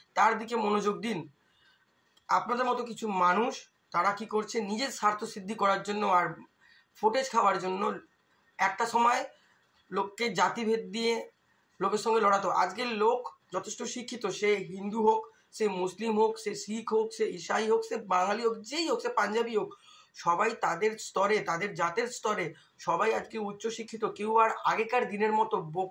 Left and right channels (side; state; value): both; identical; correlation 1.00